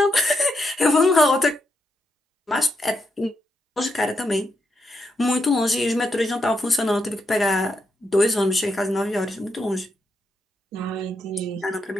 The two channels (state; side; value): normal; both; correlation 0.82